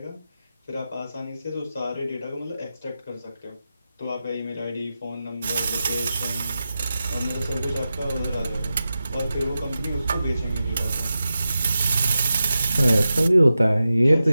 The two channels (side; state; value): both; inverted; correlation -0.92